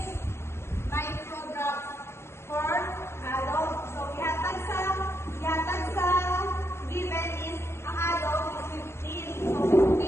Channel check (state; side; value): late; right; 0.12 ms